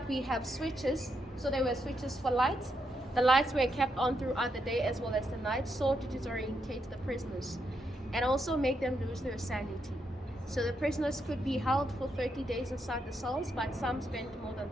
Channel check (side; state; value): both; normal; correlation 0.81